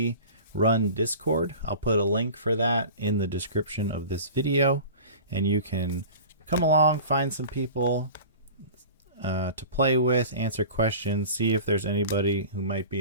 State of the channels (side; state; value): both; inverted; correlation -0.38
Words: run Discord. I'll put a link for that in the description of this video, and you can come along, find some people to play with, answer questions, see if there's anybody who might